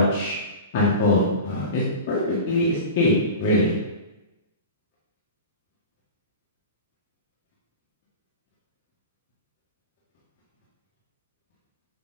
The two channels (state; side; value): inverted; both; correlation -0.30